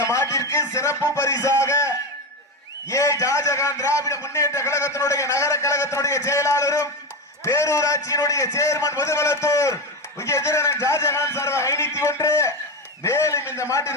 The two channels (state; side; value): normal; both; correlation 0.16